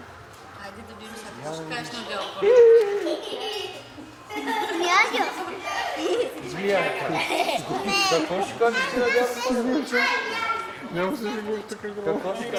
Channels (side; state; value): both; identical; correlation 1.00